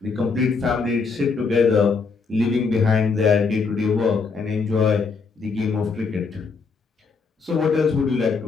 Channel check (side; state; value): right; quieter; 4.9 dB